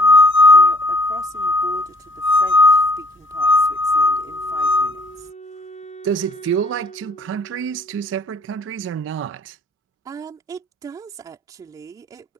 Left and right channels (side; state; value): both; normal; correlation 0.58